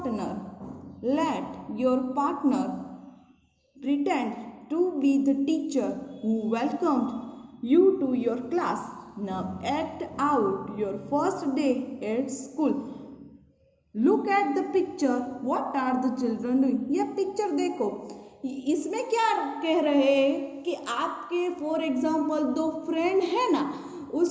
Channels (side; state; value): both; identical; correlation 1.00